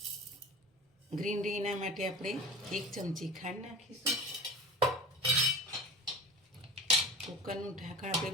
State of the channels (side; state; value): both; normal; correlation 0.35